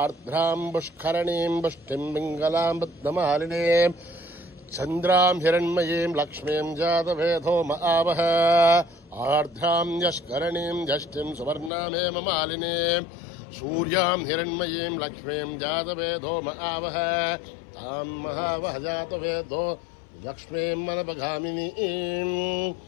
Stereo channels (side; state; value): right; drops out; at 11.7 s